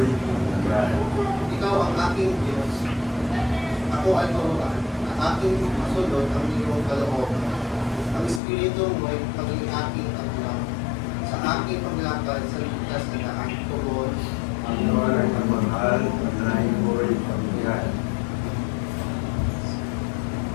pagbigat. ikaw ang aking Diyos. Ako ay turuan. Ang aking masunod ang iyong kalooban. Ang Espiritu mo ay paging aking aglang. Sa aking paglakad sa ligtas na daan. Tugon, Panginoon ang mahal, panalangin ko'y pagbigat.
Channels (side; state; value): right; drops out; at 8.4 s